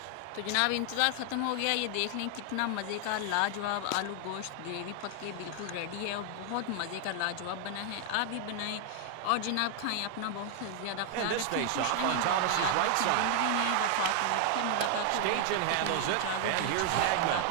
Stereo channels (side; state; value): both; different; correlation 0.00